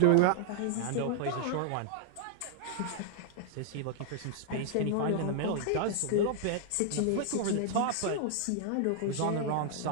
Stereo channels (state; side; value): different; both; correlation 0.00